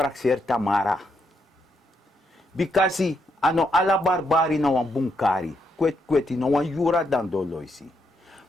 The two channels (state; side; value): normal; both; correlation 0.78